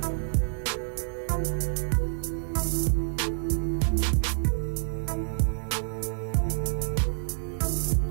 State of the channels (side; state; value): left; silent; digital silence